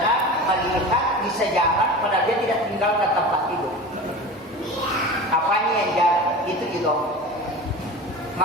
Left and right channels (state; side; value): normal; both; correlation 0.33